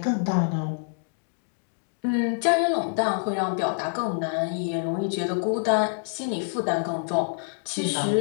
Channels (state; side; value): silent; right; digital silence